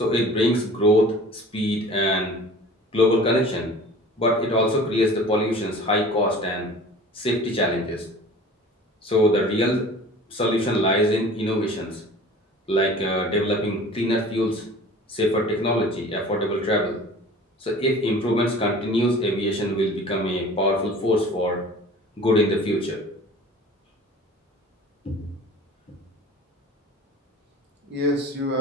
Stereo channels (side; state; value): both; normal; correlation 0.43